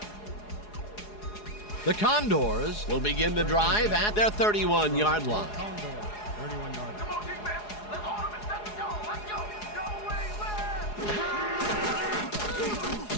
The Condors will begin the drive at their 31-yard line. Condors, 31-yard line. Come on, defense. Let's hold him and set the goal. Let's go. Go away, left.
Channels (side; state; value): right; late; 4.8 ms